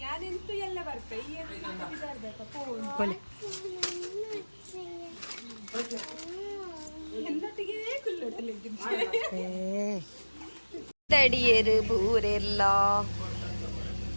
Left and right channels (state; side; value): inverted; both; correlation -1.00